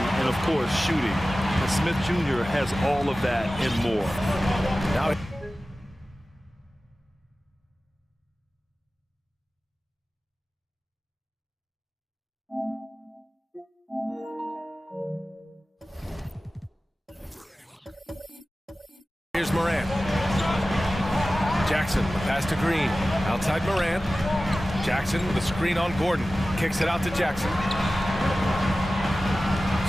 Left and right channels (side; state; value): both; normal; correlation 0.96